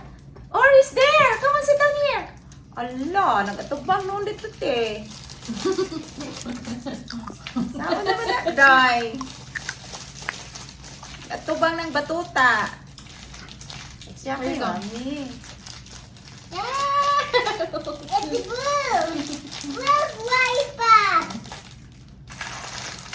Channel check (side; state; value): both; identical; correlation 1.00